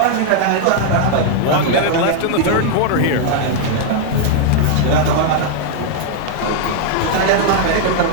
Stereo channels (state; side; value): different; both; correlation 0.00